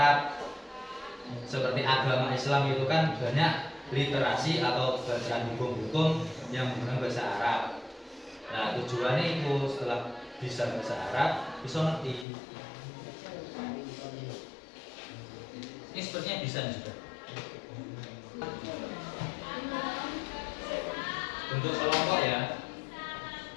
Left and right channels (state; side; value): drops out; right; at 12.2 s